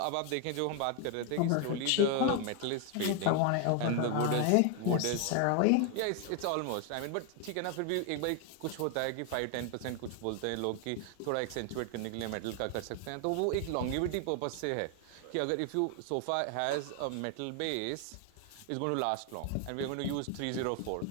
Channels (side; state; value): both; different; correlation 0.01